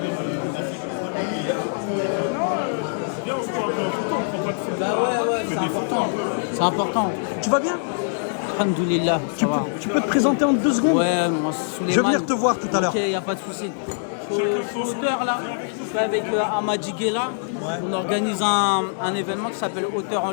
C'est important. Tu vas bien? Alhamdoulilah, ça va. Tu peux te présenter en 2 secondes? Ouais, moi, Je vais Souleymane. venir te voir tout à l'heure. Ok, il n'y a pas de souci. Je suis auteur là, je suis avec Amadi Guela. On organise un événement qui s'appelle Auteur en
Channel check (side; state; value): right; silent; 61 dB below the other